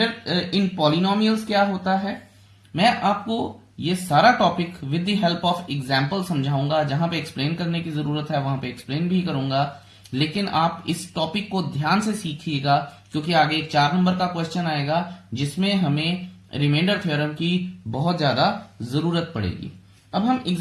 इन पॉलिनोमियल्स क्या होता है, मैं आपको ये सारा topic with the help of example समझाऊंगा। जहां पे एक्सप्लेन करने की जरूरत है वहां पे एक्सप्लेन भी करूंगा, लेकिन आप इस टॉपिक को ध्यान से सीखिएगा क्योंकि आगे एक 4 नंबर का क्वेश्चन आएगा जिसमें हमें रिमाइंडर थ्योरम की बहुत ज्यादा जरूरत पड़ेगी। अब हम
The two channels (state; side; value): identical; both; correlation 1.00